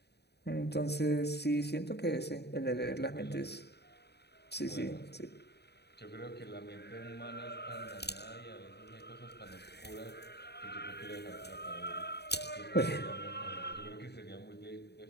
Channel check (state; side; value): late; right; 0.48 ms